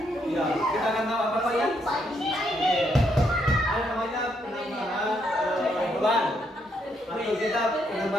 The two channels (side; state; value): both; normal; correlation 0.75